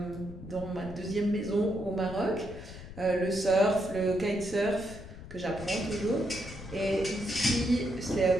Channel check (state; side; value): noise; left; rumble, 14 dB below the sound